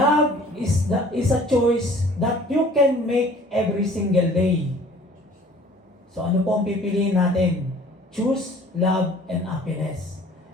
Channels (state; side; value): normal; both; correlation 0.51